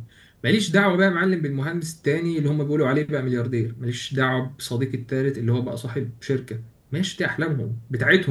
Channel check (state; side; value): identical; both; correlation 1.00